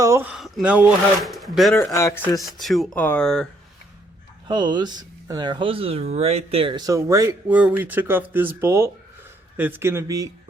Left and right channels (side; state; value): both; normal; correlation 0.69